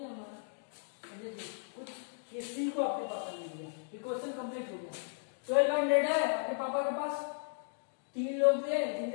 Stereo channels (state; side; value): silent; right; digital silence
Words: हमारा। देखिए कुछ ये सी को आपके पापा ने दिया, ये क्वेश्चन कंप्लीट हो गया। 1200 है आपके पापा के पास। 3 लोग थे